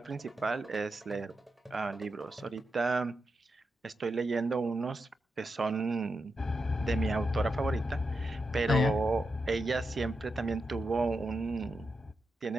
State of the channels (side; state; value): both; normal; correlation 0.87